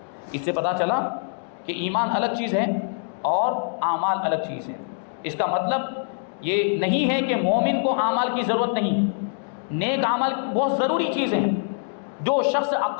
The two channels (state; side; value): silent; right; digital silence